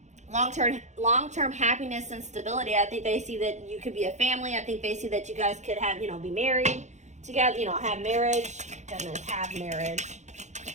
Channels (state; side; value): late; left; 0.34 ms